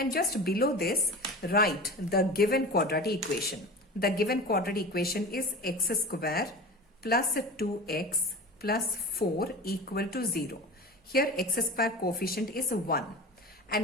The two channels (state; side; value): normal; both; correlation 0.33